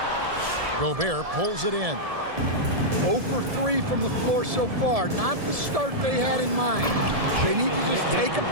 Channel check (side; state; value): left; late; 1.7 ms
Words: Gobert pulls it in. 0 for 3 from the floor so far. Not the start they had in mind. They need to just take a